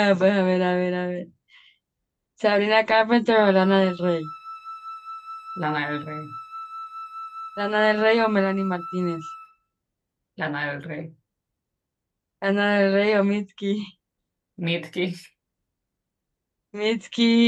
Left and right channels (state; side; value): identical; both; correlation 1.00